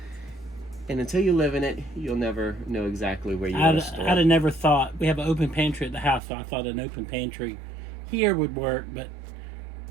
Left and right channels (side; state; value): left; drops out; at 6.2 s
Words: And until you live in it, you'll never know exactly where you want to store. I'd have never thought. We have an open pantry at the house, so I thought an open pantry here would work. But